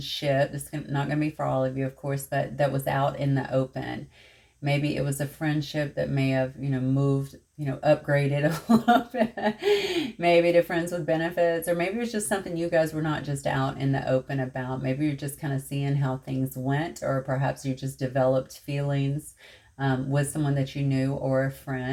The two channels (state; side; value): identical; both; correlation 1.00